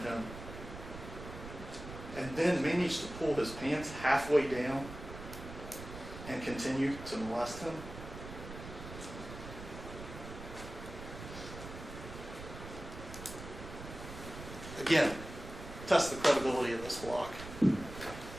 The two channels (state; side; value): noise; right; rumble, 11 dB below the sound